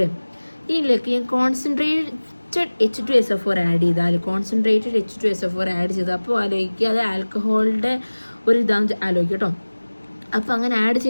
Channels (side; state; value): both; inverted; correlation -1.00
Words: ഇതിലേക്ക് കോൺസെൻട്രേറ്റഡ് H2SO4 ആഡ് ചെയ്താൽ, കോൺസെൻട്രേറ്റഡ് H2SO4 ആഡ് ചെയ്താൽ അപ്പോൾ ആലോചിക്കുക അത് ആൽക്കഹോളിൻ്റെ ഒരു ഇതാന്ന് ആലോചിക്കുക കേട്ടോ. അപ്പോൾ അങ്ങനെ ആഡ്